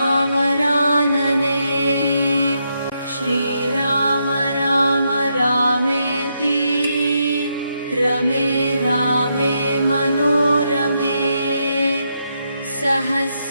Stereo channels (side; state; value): both; inverted; correlation -0.80